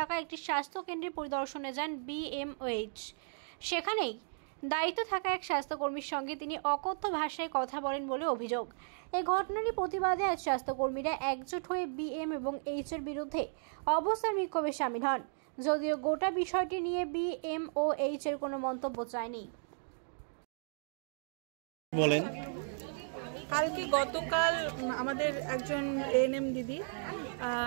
একটি স্বাস্থ্য কেন্দ্রে পরিদর্শনে যান বিএমওএইচ। সেখানেই দায়িত্ব থাকা এক স্বাস্থ্যকর্মীর সঙ্গে তিনি অকথ্য ভাষায় কথা বলেন বলে অভিযোগ। এই ঘটনারই প্রতিবাদে আজ স্বাস্থ্যকর্মীরা একজোট হয়ে বিএম এবং এইচ এর বিরুদ্ধে অবস্থান বিক্ষোভে সামিল হন। যদিও গোটা বিষয়টি নিয়ে বিএমওএইচ এর কোনো মন্তব্য চায়নি। বলেন, গতকাল আমাদের একজন এএনএম দিদি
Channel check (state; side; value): silent; left; digital silence